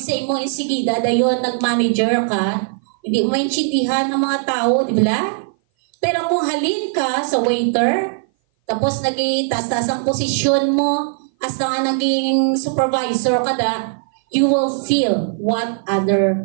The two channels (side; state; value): left; silent; 58 dB below the other